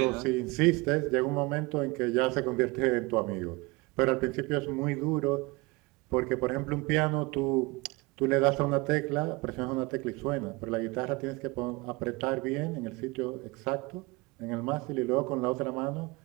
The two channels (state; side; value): quieter; left; 24.9 dB